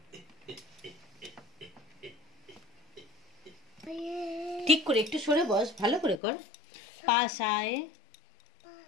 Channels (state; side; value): drops out; right; at 6.2 s